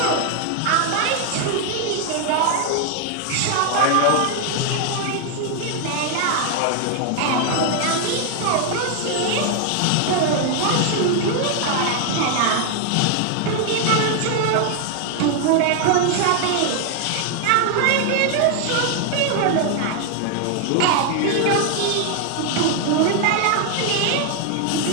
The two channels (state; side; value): different; both; correlation 0.00